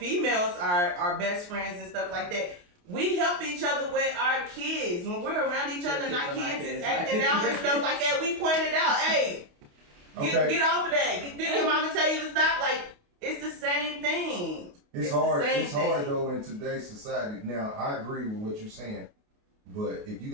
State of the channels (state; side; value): late; left; 28 ms